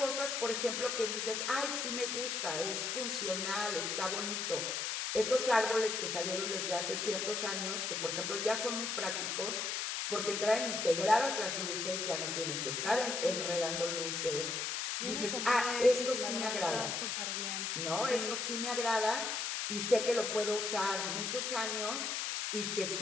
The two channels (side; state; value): left; noise; hiss, 1 dB below the sound